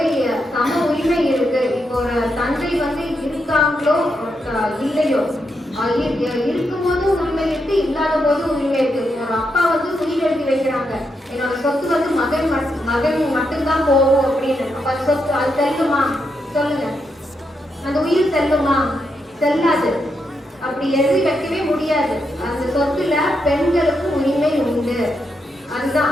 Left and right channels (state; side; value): normal; both; correlation 0.82